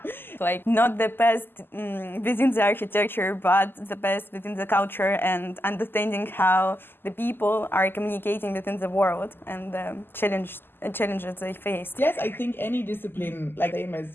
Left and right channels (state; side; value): late; right; 0.099 ms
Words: Like not the best within the architecture, but the best within the culture, and understanding how the people are communicating within the world and the challenges they face. Yes, I think any discipline, like same